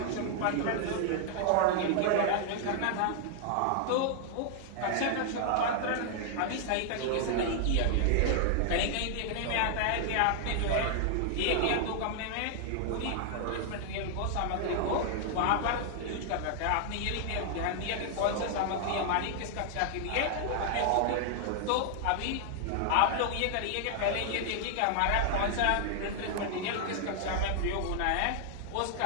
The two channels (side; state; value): both; different; correlation 0.00